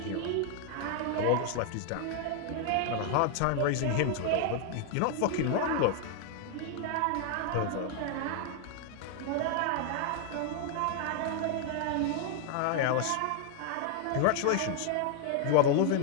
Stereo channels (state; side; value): different; both; correlation 0.00